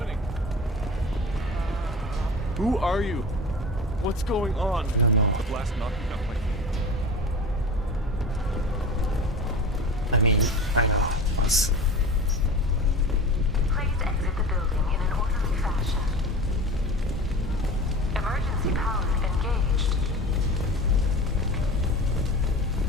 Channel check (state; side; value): normal; both; correlation 0.33